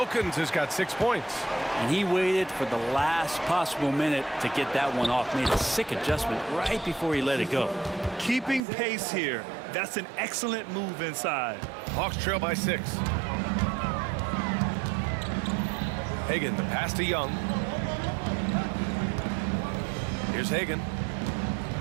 has got 6 points. And he waited for the last possible minute to get that one off. Made a sick adjustment right before he let it go. Keeping pace here. That's an excellent move inside. Hawks trail by 6. Hagan, the pass to Young. Here's Hagan.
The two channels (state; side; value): drops out; left; at 8.6 s